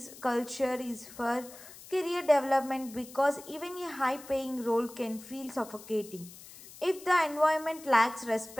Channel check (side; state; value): left; noise; hiss, 18 dB below the sound